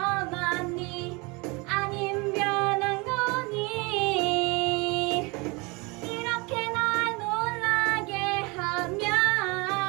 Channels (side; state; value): left; quieter; 27.2 dB